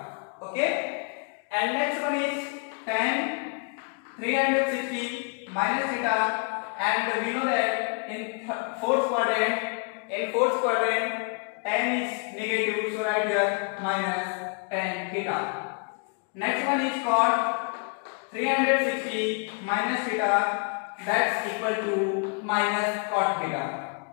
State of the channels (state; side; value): quieter; right; 39.4 dB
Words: Okay, and next one is tan 360 minus theta, and we know that in fourth quadrant tan is negative, so write here minus tan theta. Next one is cot 360 minus theta, that's equal to minus cot theta.